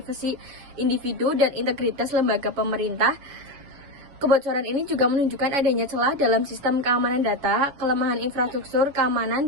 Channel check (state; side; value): late; left; 7.2 ms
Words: individu dan integritas lembaga pemerintah. Kebocoran ini juga menunjukkan adanya celah dalam sistem keamanan data, kelemahan infrastruktur